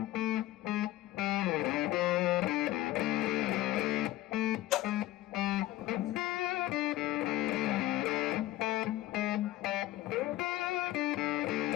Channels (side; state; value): right; quieter; 15.7 dB